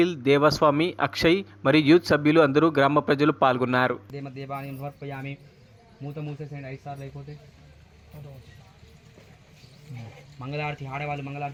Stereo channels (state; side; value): identical; both; correlation 1.00